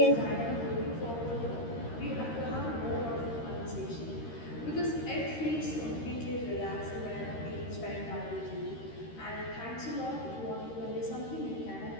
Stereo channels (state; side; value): late; right; 13 ms